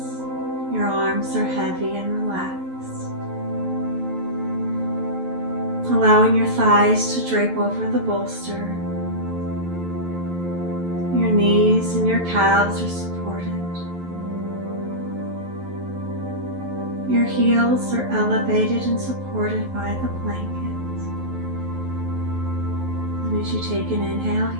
your arms are heavy and relaxed. Allowing your thighs to drape over the bolster. Your knees and your calves are supported. Your heels are elevated and supported by the blanket. And as you take an inhale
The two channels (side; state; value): left; late; 11 ms